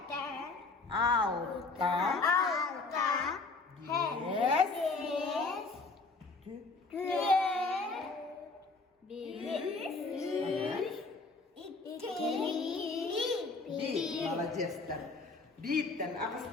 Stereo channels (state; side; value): quieter; right; 3.8 dB